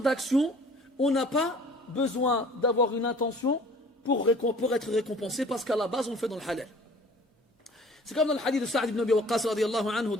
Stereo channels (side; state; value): both; normal; correlation 0.49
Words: on n'a pas besoin d'avoir une intention pour être récompensé parce qu'à la base on le fait dans le halal. C'est comme dans le hadith de Sa'd ibn Abi Waqqas radiyallahu anhu